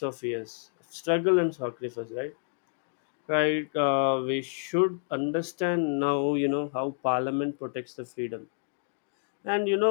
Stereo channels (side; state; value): right; silent; digital silence